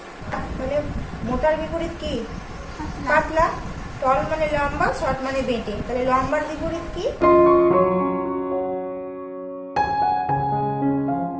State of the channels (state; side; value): identical; both; correlation 1.00